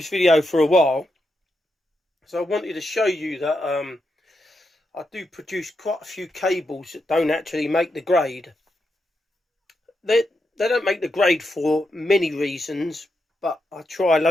video for a while. So I wanted to show you that I do produce quite a few cables that don't actually make the grade. They don't make the grade for many reasons, but I try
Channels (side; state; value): both; normal; correlation 0.84